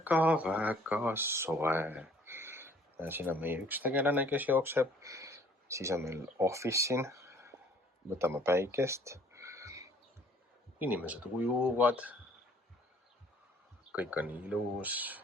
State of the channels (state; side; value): normal; both; correlation 0.57